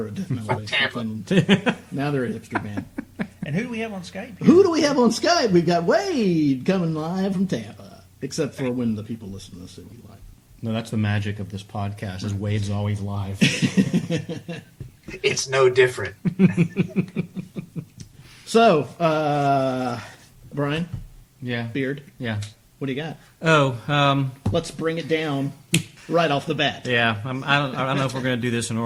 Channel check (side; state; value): both; identical; correlation 1.00